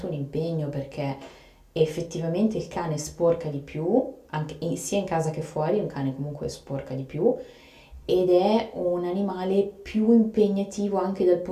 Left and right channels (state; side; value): identical; both; correlation 1.00